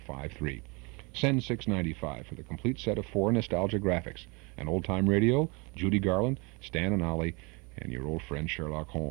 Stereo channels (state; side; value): quieter; left; 29.5 dB